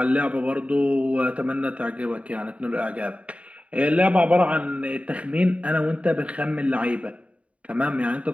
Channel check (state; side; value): late; left; 0.065 ms